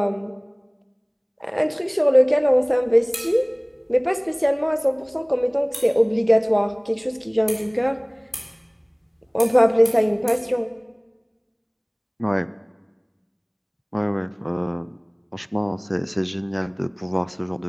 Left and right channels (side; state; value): both; identical; correlation 1.00